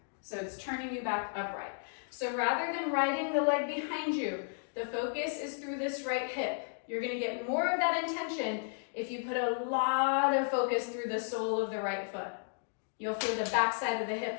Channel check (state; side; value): silent; right; digital silence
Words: So it's turning you back upright. So rather than riding the leg behind you, the focus is through this right hip. You're going to get more of that intention if you put a lot of focus through the sole of the right foot. You'll feel the back side of the